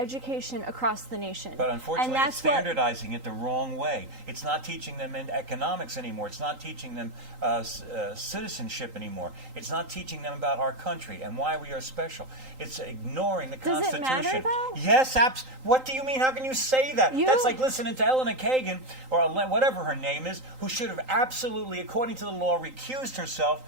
across the nation. But unfortunately, and it's that's what, standardizing it the wrong way. It's not teaching them in economics anymore. It's not teaching them citizenship anymore. It's not teaching them about our country and why we are special. It's ignoring the Does it Constitution. matter, though? Yes, what do you mean? How can you say that? That's like listening to Eleanor Kagan, or whatever her name is, who should have absolutely, according to the law, recused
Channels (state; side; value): late; left; 3.8 ms